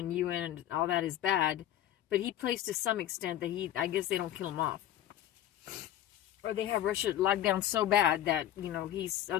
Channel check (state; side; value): quieter; right; 12.2 dB